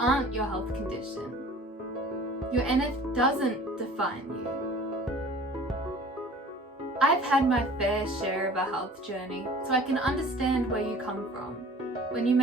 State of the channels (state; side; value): normal; both; correlation 0.46